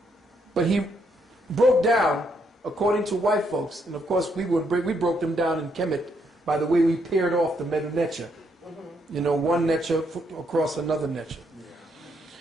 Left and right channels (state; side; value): normal; both; correlation 0.74